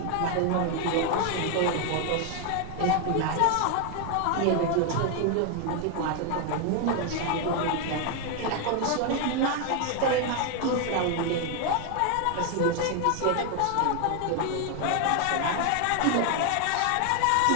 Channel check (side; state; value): both; different; correlation 0.01